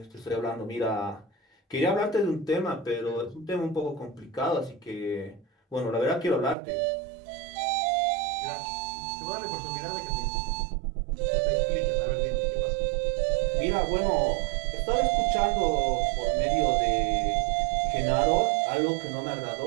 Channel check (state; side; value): drops out; left; at 6.6 s